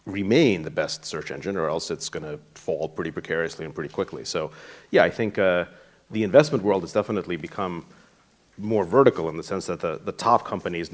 remain the best search engine, or else it's going to fall pretty precariously and pretty quickly. So, yeah, I think the investment world has definitely become more vertical in the sense that the top company is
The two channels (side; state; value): both; identical; correlation 1.00